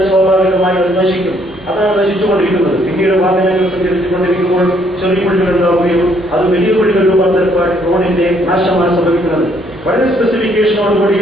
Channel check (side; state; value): right; noise; hum, 27 dB below the sound